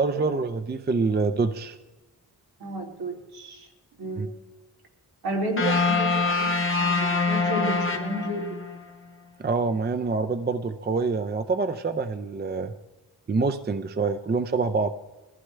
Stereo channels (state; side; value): normal; both; correlation 0.34